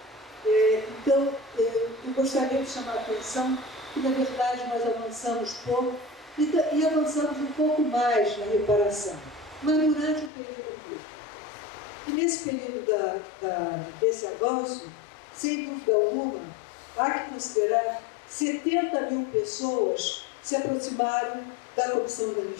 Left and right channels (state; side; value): drops out; right; at 10.3 s